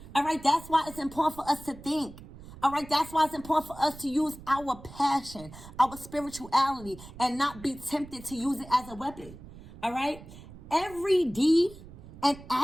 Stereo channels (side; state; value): right; noise; rumble, 17 dB below the sound